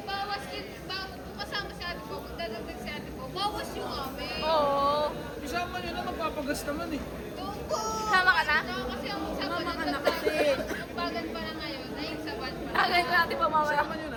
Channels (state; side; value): identical; both; correlation 1.00